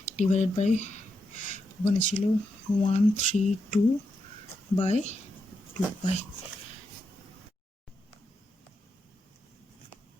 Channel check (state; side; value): normal; both; correlation 0.84